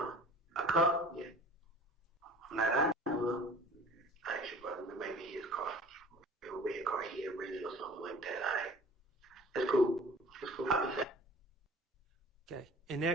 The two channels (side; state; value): both; normal; correlation 0.45